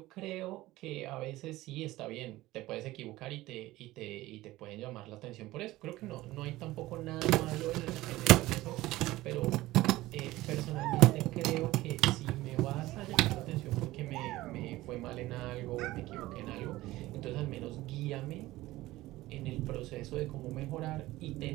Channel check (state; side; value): quieter; left; 17.6 dB